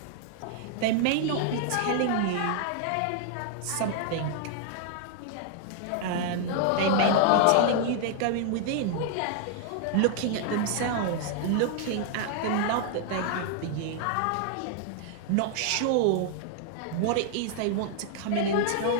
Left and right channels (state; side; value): different; both; correlation 0.00